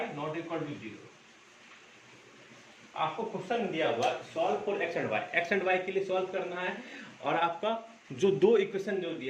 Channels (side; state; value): both; identical; correlation 1.00